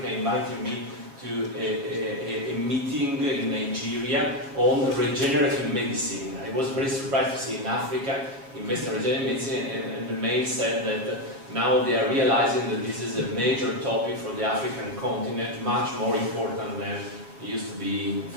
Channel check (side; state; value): left; late; 7.2 ms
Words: inviting me to a meeting in Nigeria on regenerative medicine. I was very surprised to see in Africa invest in regenerative medicine, and the mail said that now they are realizing that this is a major topic for the African continent, much more important than it used to be